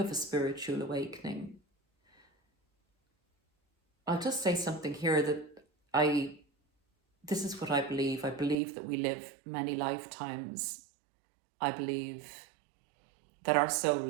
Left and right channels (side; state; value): left; drops out; at 8.6 s